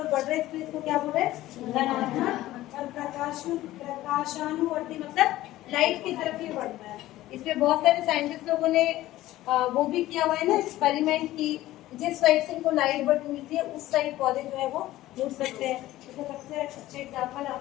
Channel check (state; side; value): quieter; right; 15.7 dB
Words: बढ़ रहे हैं, इसको क्या बोल रहे हैं? धनात्मक। और प्रकाशानुवर्ती मतलब लाइट की तरफ ही बढ़ता है। इसमें बहुत सारे साइंटिस्ट लोगों ने वो भी किया हुआ है ना एक्सपेरिमेंट की, जिस साइड से इनको लाइट बढ़ती मिलती है उस साइड पौधे जो है वो उड़ सकते हैं। तो सबसे अच्छे एग्जाम्पल